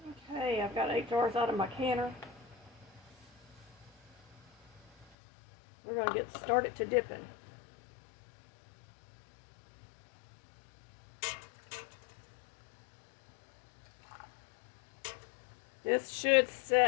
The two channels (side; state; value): right; drops out; at 5.1 s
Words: Okay, I've got 8 jars out of my canner. We're going to get started to dipping. This should